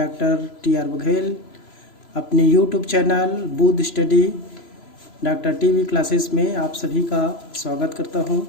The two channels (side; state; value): right; late; 3.0 ms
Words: टी.आर. बघेल अपने YouTube channel Budh study doctor TV classes में आप सभी का स्वागत करता